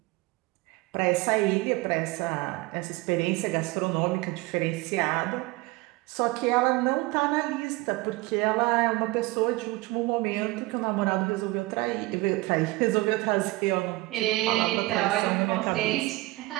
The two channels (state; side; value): quieter; left; 21.3 dB